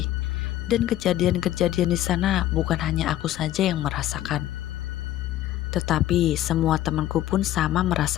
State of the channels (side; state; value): right; quieter; 13.3 dB